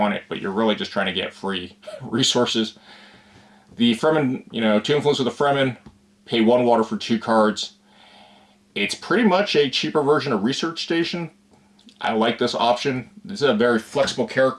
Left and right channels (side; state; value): both; identical; correlation 1.00